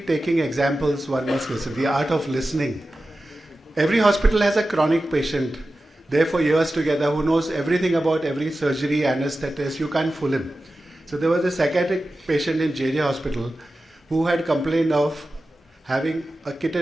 examples one must listen. The art of listening. Every hospital has a chronic patient there for years together who knows everything about every surgery, anesthetist. You can't fool him. So there was a psychiatric patient in JJ Hospital who had complained of having a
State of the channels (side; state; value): both; normal; correlation 0.94